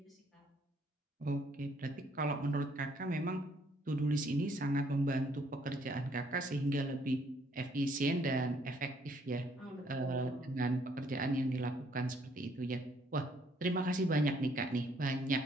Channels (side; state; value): both; normal; correlation 0.66